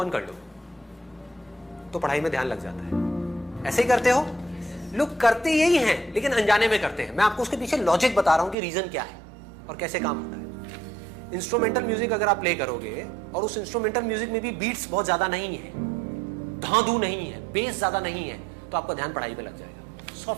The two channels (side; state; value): left; drops out; at 8.6 s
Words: कर लो तो पढ़ाई में ध्यान लग जाता है। ऐसे ही करते हो? लोग करते यही हैं लेकिन अनजाने में करते हैं। मैं आपको उसके पीछे लॉजिक बता रहा हूं कि रीजन क्या है और कैसे काम होता है। इंस्ट्रूमेंटल म्यूजिक अगर आप प्ले करोगे और उस इंस्ट्रूमेंटल म्यूजिक में भी बीट्स बहुत ज्यादा नहीं है, धांधू नहीं है, बेस ज्यादा नहीं है, तो आपका ध्यान पढ़ाई पे लग जाएगा।